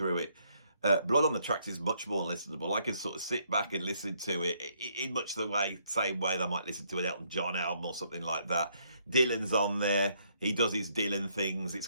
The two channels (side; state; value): both; inverted; correlation -0.70